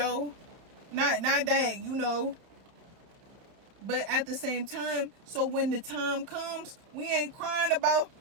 Not that, but at the same time, so when the time comes, we ain't crying about,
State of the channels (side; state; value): left; late; 30 ms